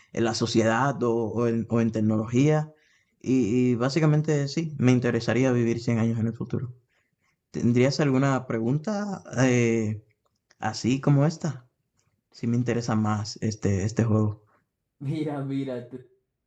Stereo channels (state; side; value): identical; both; correlation 1.00